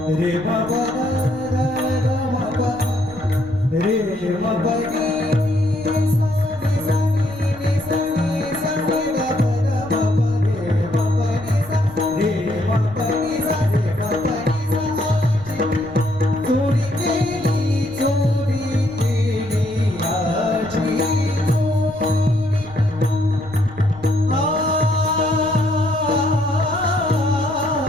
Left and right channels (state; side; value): noise; left; rumble, 20 dB below the sound